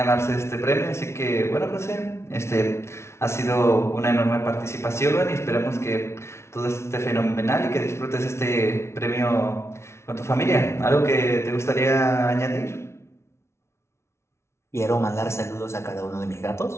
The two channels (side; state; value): right; late; 0.13 ms